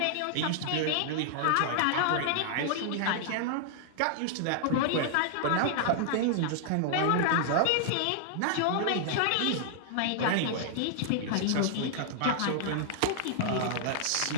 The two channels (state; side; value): different; both; correlation -0.01